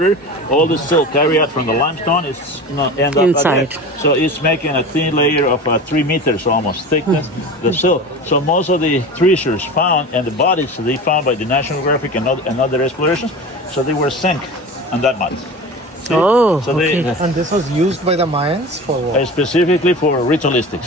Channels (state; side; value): normal; both; correlation 0.32